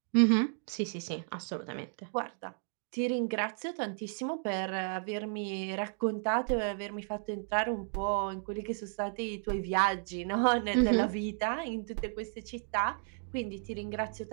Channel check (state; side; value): silent; left; 56 dB below the other